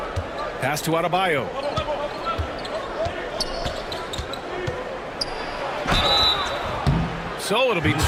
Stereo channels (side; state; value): both; identical; correlation 1.00